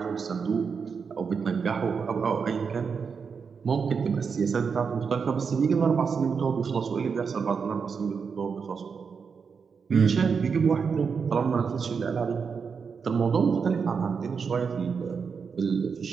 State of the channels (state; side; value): quieter; left; 5.8 dB